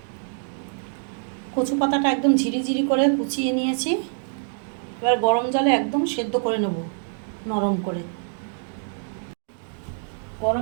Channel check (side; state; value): left; silent; digital silence